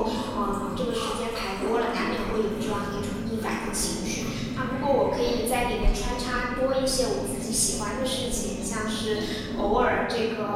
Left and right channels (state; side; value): identical; both; correlation 1.00